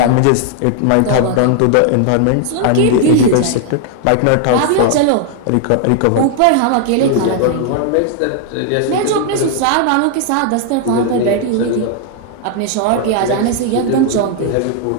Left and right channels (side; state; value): both; different; correlation 0.00